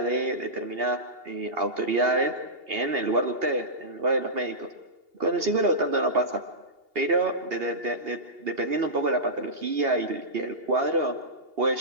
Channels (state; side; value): late; left; 2.8 ms